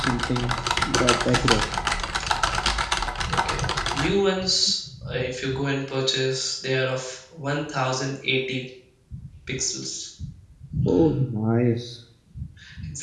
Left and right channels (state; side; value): identical; both; correlation 1.00